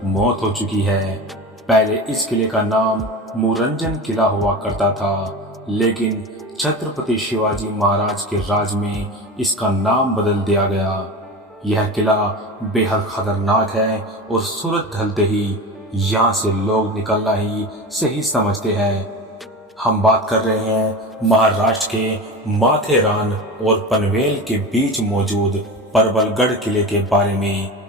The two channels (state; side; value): normal; both; correlation 0.28